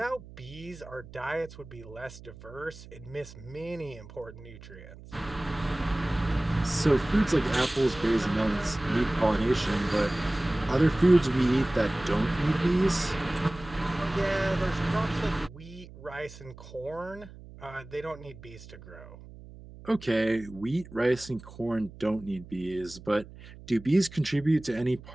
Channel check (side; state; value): right; noise; hum, 17 dB below the sound